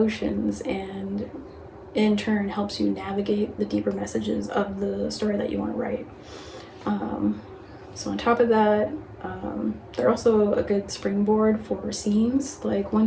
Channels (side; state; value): both; identical; correlation 1.00